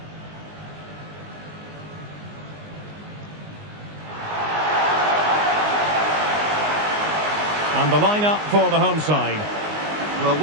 And the lineup for the home side. Well,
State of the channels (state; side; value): late; left; 19 ms